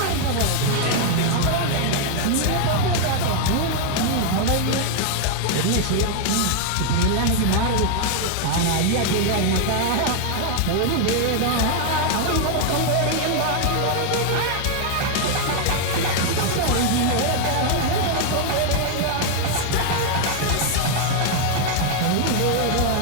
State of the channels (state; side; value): different; both; correlation 0.00